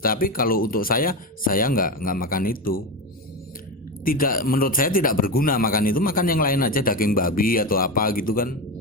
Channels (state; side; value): normal; both; correlation 0.18